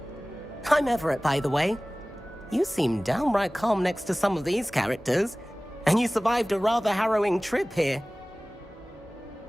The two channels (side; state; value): both; normal; correlation 0.98